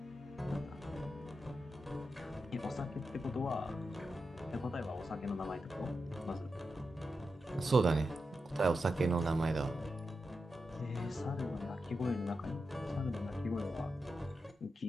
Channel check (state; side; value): normal; both; correlation 0.88